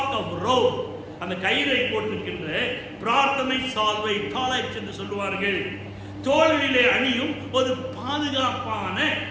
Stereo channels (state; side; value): identical; both; correlation 1.00